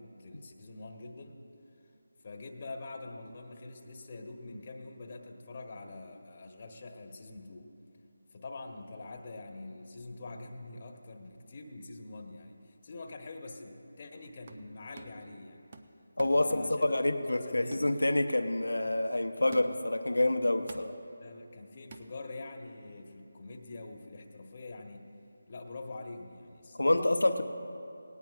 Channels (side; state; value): both; inverted; correlation -0.98